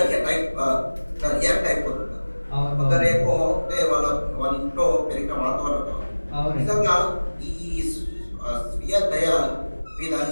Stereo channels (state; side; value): inverted; both; correlation -1.00